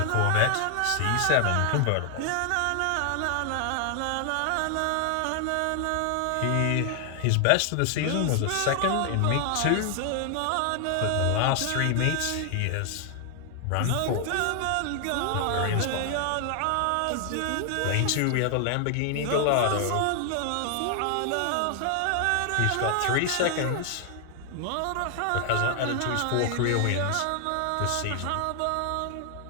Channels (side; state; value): both; different; correlation 0.00